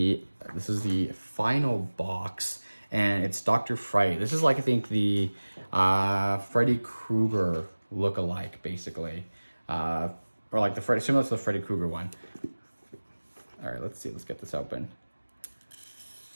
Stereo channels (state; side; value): inverted; both; correlation -1.00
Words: is the final box, and it's Dr. Fright. This is like, I think, the Freddy Krueger look-alike, basically. Or like similar to the Freddy Krueger one. All right, let's see. Let's get this open.